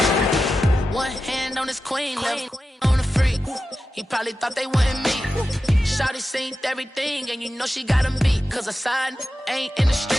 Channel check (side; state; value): both; normal; correlation 0.92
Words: One hand on his queen, left on the freak. He probably thought they wouldn't meet. Shawty seen everything, and you know she got him beat. Cause a side ain't in the